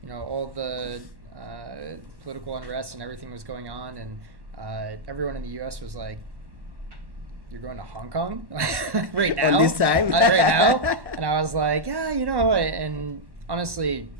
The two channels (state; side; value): late; left; 1.1 ms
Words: all the political unrest and everything was going on, and everyone in the U.S. was like, "You're going to Hong Kong right now?" On this time? Right now? And I was like, "Yeah, and honestly,